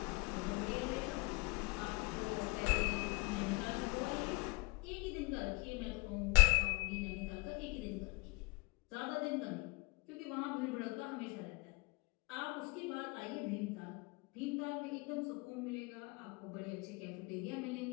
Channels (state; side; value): quieter; right; 26.5 dB